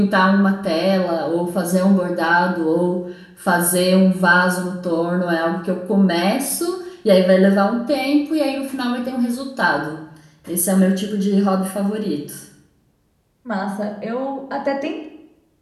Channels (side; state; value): both; identical; correlation 1.00